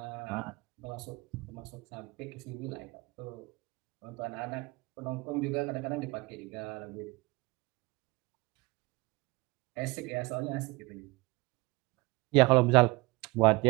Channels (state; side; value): quieter; left; 23.7 dB